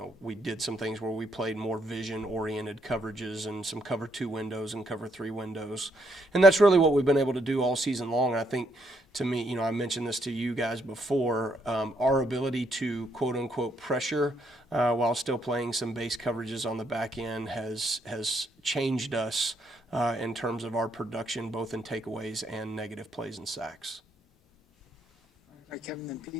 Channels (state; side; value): normal; both; correlation 0.74